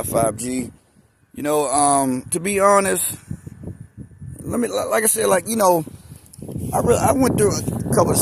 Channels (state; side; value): identical; both; correlation 1.00